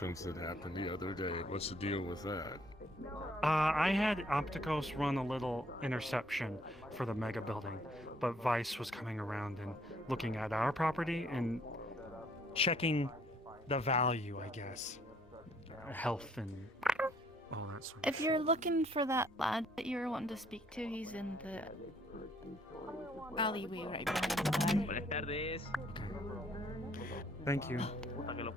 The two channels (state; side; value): normal; both; correlation 0.65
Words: that happened the other day. What's the deal with that? I had Opticos run a little interception for the mega building, but Vice was coming around and looking at our property and checking the value, I guess. Health and all that sort of If you're looking for that lad that you were wanting to speak to, he's in the alleyway right behind the bar. Buenas tardes. Thank you. Puta que lo